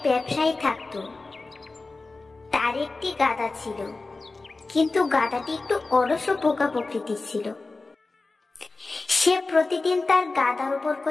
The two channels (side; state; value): right; quieter; 3.5 dB